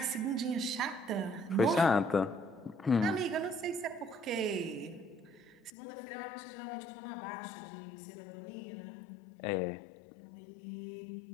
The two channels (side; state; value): right; drops out; at 5.7 s